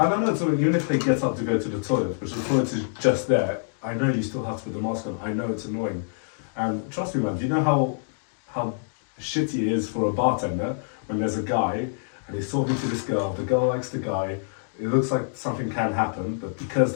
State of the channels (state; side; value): silent; right; digital silence